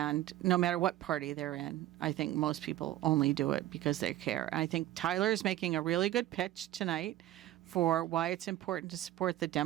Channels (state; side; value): quieter; left; 14.2 dB